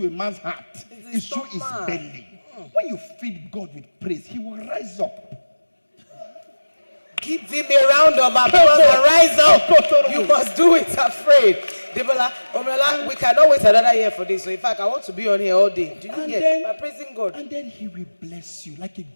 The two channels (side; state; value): both; inverted; correlation -1.00